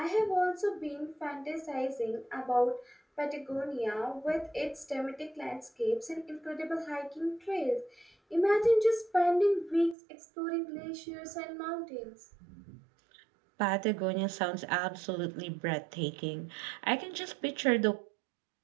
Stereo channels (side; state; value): left; drops out; at 10.0 s